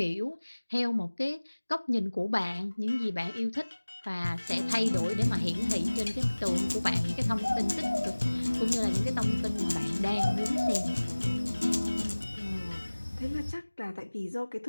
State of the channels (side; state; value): both; inverted; correlation -1.00